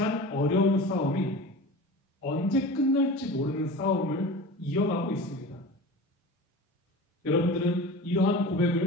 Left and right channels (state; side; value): normal; both; correlation 0.34